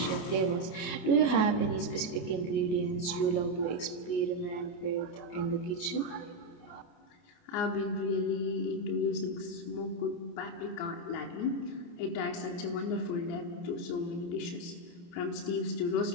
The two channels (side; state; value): right; late; 28 ms